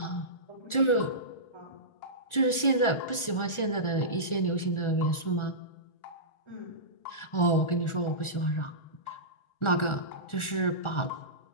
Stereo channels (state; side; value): late; right; 1.4 ms